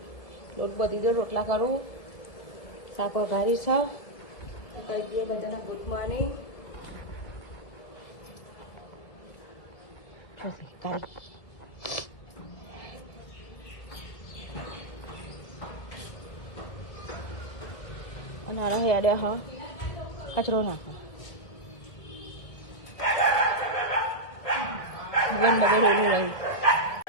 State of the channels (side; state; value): right; late; 1.4 ms